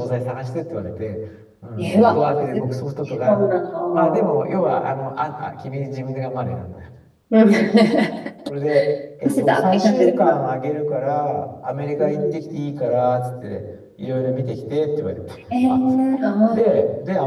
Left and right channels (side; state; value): both; identical; correlation 1.00